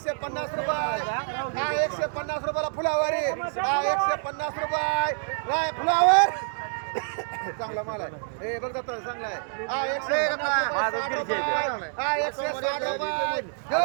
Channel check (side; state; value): left; silent; digital silence